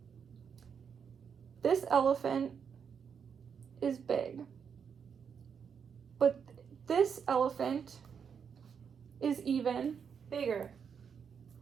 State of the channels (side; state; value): left; quieter; 6.9 dB